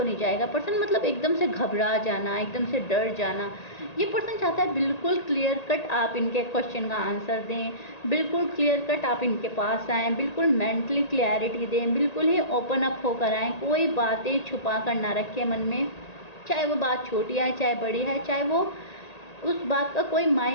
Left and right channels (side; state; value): right; late; 1.8 ms